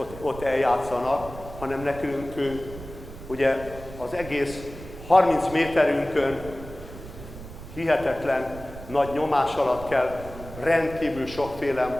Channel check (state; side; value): noise; right; rumble, 14 dB below the sound